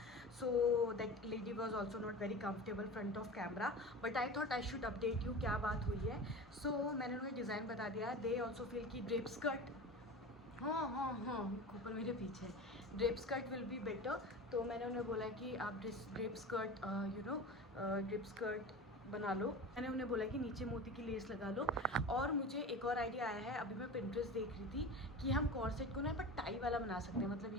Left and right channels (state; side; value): normal; both; correlation 0.31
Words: So that lady was also not very comfortable front of camera, but I thought I should update you क्या बात हुई है। सो मैंने उन्हें डिज़ाइन बता दिया। दे ऑल्सो फील की ड्रेप स्कर्ट, हाँ ऊपर मेरे पीछे drape skirt will be better. तो मैंने उन्हें बोला कि आप ड्रेप स्कर्ट ड्रेप स्कर्ट बना लो। मैंने उन्हें बोला कि नीचे मोती की लेस लगा लो। और मुझे एक और आइडिया आया है, अभी मैं पिंटरेस्ट देख रही थी कि हम कॉर्सेट को ना पर टाई वाला बना सकते हैं, मतलब